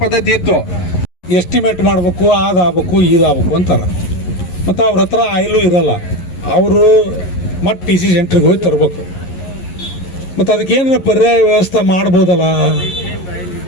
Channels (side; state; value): right; late; 11 ms